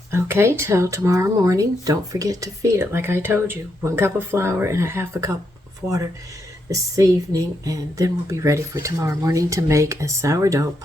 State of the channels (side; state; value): both; normal; correlation 0.80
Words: Okay, till tomorrow morning. Don't forget to feed it like I told you. 1 cup of flour and 1/2 cup of water. this evening, and then we'll be ready for tomorrow morning to make a sourdough